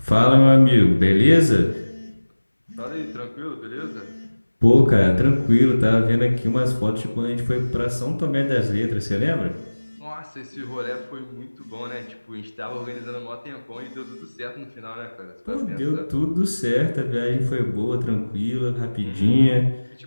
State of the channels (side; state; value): both; inverted; correlation -1.00